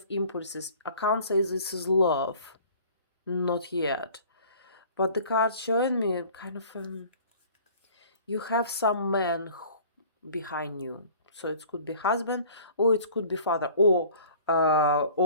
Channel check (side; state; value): both; inverted; correlation -0.49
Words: impulses. I can't say this is love, not yet. But the card showing me kind of you have some man behind you. So it could be husband, or it could be father, or